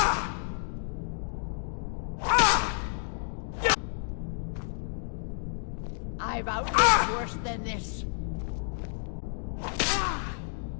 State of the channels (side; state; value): right; silent; digital silence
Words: I've outlived worse than this.